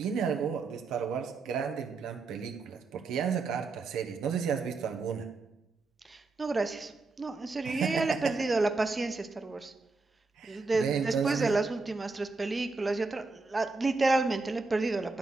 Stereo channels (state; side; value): quieter; left; 3.9 dB